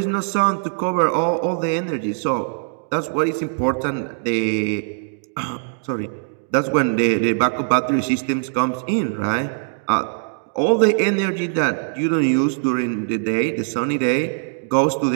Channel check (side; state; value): left; silent; digital silence